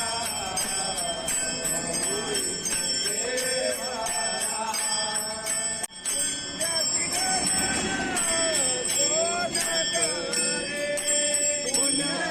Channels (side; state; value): both; identical; correlation 1.00